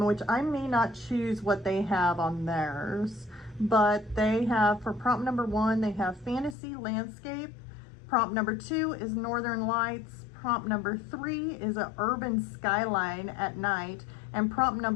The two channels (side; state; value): right; drops out; at 6.6 s